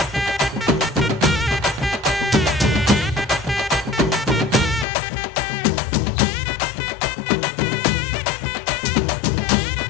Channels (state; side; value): drops out; right; at 4.9 s